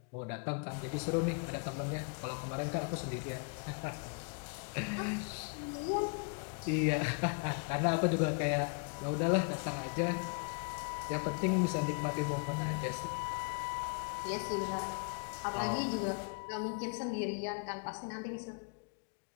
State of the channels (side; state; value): right; quieter; 35.6 dB